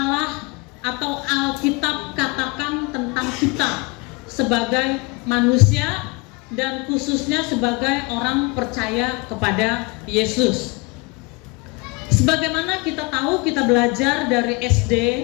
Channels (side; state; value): right; quieter; 26.7 dB